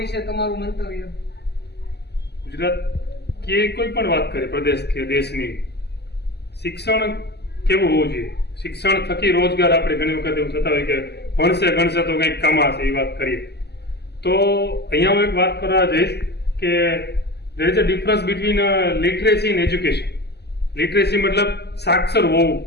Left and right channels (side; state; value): right; late; 0.49 ms